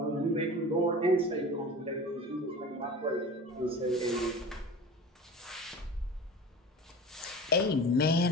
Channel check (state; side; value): normal; both; correlation 0.36